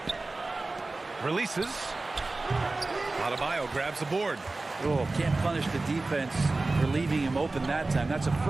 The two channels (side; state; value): left; quieter; 3.3 dB